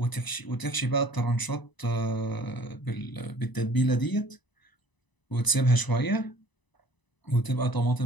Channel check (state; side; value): late; right; 1.0 ms